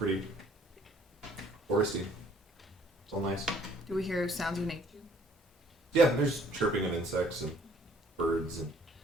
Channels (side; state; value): both; normal; correlation 0.59